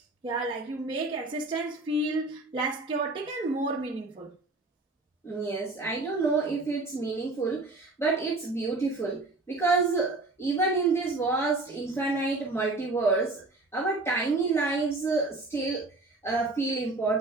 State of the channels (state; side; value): quieter; left; 3.1 dB